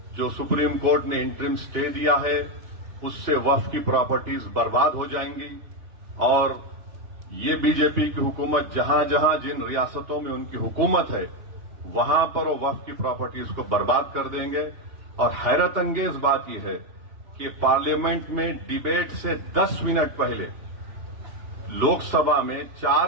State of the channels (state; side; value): late; left; 2.8 ms